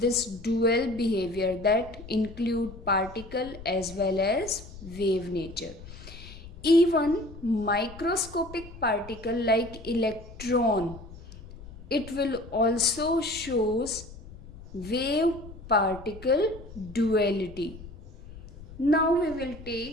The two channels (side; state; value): left; noise; rumble, 16 dB below the sound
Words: dual behavior that include particle as well as wave nature. Even microscopic particle like electron, it will also shows wave particle duality. Now we will